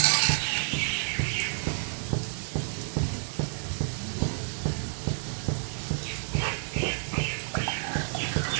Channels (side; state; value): left; silent; digital silence